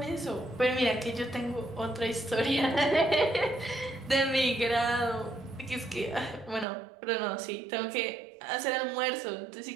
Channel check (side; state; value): left; drops out; at 6.7 s